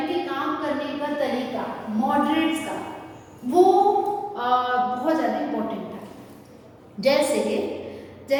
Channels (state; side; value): identical; both; correlation 1.00